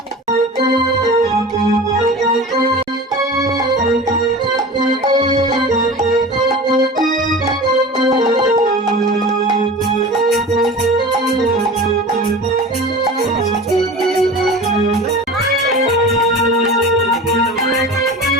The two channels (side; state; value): both; normal; correlation 0.35